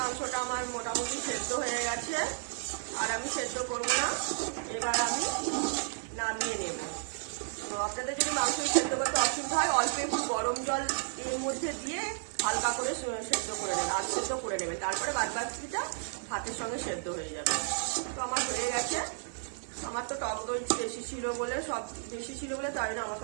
আমার মোটামুটি সেদ্ধ হয়ে গেছে, আর আমি সেদ্ধ করবো না। এবার আমি নামিয়ে নেব। আপনাদের যদি মাংস সেদ্ধ করতে অসুবিধা হয় অল্প একটু গরম জল এর মধ্যে দিয়ে হালকা করে সেদ্ধ করে নেবে, আর সেদ্ধ করে নেবে, তারপরে বাদ বাকিটা ভাতের সঙ্গে সেদ্ধ হয়ে যাবে। তো আমার হয়ে গেছে। আমার তো টক দই বেশি ছিল বলে তাই জন্য আমাকে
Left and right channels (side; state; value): left; silent; 56 dB below the other